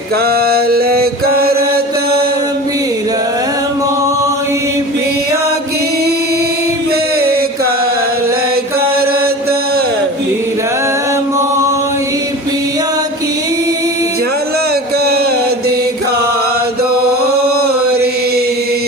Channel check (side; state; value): both; normal; correlation 0.34